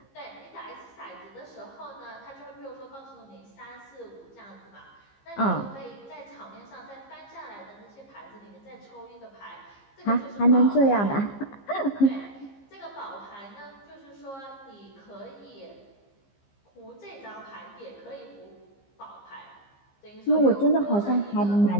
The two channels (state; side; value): late; right; 15 ms